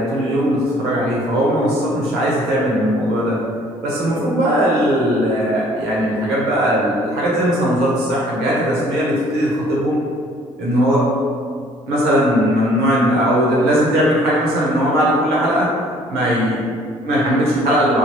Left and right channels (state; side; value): normal; both; correlation 0.57